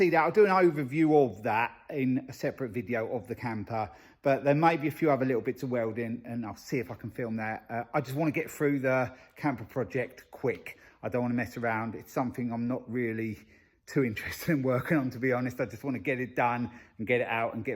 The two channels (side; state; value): both; identical; correlation 1.00